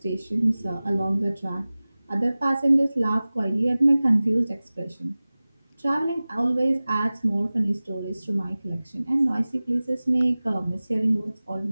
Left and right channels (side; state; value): both; inverted; correlation -0.98